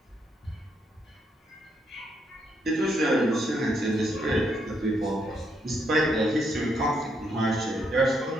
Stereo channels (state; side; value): normal; both; correlation 0.76